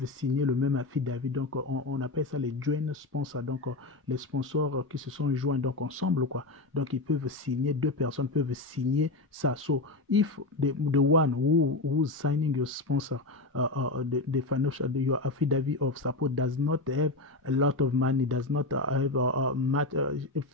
signer le même affidavit, donc on appelle ça les joint sponsors, donc les sponsors qui se sont joints donc ensemble quoi, donc ils peuvent signer, deux personnes peuvent signer ça. So if the one who's signing your sponsor the financial your affidavit of support does not have a lot of money, does not have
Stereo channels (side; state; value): right; quieter; 3.1 dB